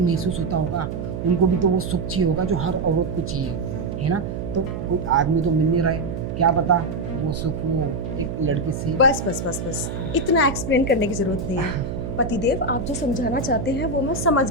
महसूस होता होगा, उनको भी तो वो सुख चाहिए होगा जो हर औरत को चाहिए, है ना। तो कोई आदमी तो मिल नहीं रहा है, क्या पता वो सुख वो एक लड़की से। बस बस बस बस, इतना एक्सप्लेन करने की जरूरत नहीं है। पतिदेव, आप जो समझाना चाहते हैं वो मैं समझ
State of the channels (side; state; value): right; noise; hum, 5 dB below the sound